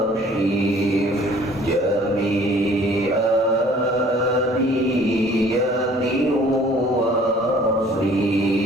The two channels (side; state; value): both; normal; correlation 0.53